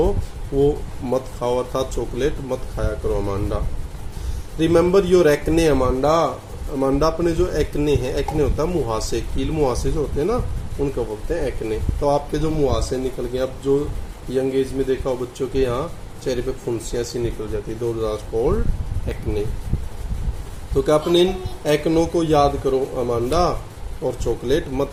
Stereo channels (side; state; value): both; identical; correlation 1.00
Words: वो मत खाओ, अर्थात चॉकलेट मत खाया करो Amanda. Remember your acne Amanda, Amanda अपने जो एक्ने हैं, एक्ने होता है मुहासे, कील मुहासे जो होते हैं ना, उनको बोलते हैं एक्ने। तो आपके जो मुहासे निकल गए, अब जो यंग एज में देखा हो बच्चों के यहाँ चेहरे पे फुंसियाँ सी निकल जाती है, दोज आर कॉल्ड एक्ने। तो क्या अपने इन एक्नों को याद करो अमांडा, और चॉकलेट मत